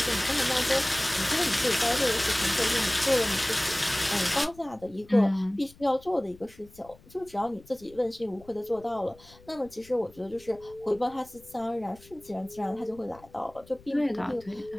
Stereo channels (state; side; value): noise; left; rumble, 24 dB below the sound